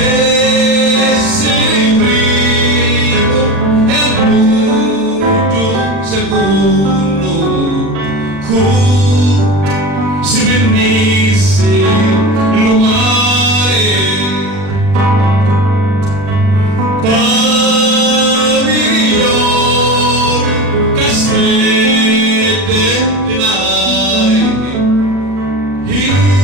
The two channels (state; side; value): late; left; 40 ms